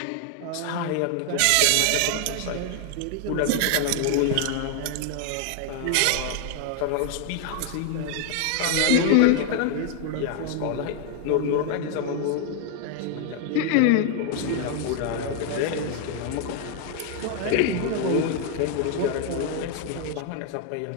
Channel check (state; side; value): different; both; correlation 0.00